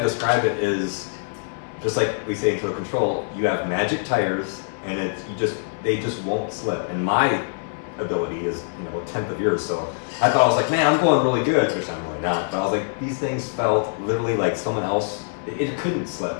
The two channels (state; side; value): silent; right; digital silence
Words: describe it is just like we say in Total Control, you have magic tires, and they just won't slip. And my ability is a tenth of yours, so I thought, I was like, man, I'm going really good, which I'm really not, but I was like, these things felt literally like someone else, it couldn't slip.